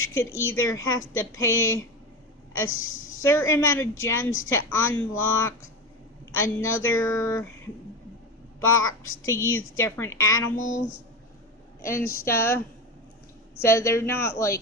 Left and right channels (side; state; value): both; normal; correlation 0.22